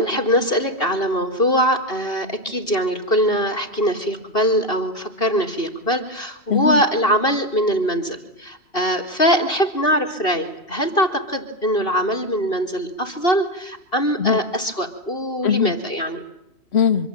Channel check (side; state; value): right; late; 2.7 ms